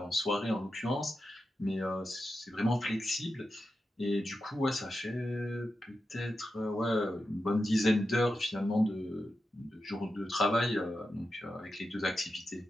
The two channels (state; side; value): normal; both; correlation 0.90